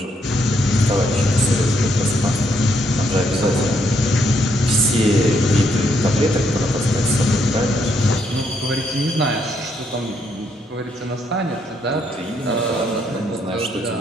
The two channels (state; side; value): normal; both; correlation 0.74